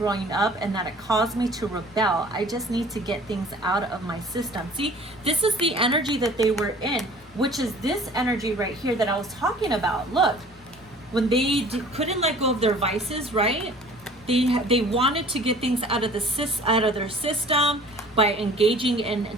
up, and that it caused me to rebel. I just need to get things out of my system. See, this is the energy that they were in, which is this energy right here that I was talking about. Look, when they couldn't let go of their vices, right? They wanted to get things out of their system by engaging in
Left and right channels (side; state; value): both; normal; correlation 0.48